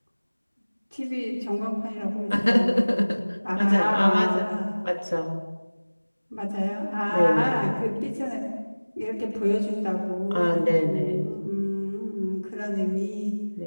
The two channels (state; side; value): inverted; both; correlation -1.00